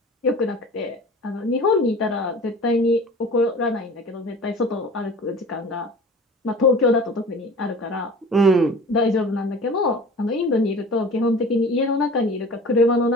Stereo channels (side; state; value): both; normal; correlation 0.41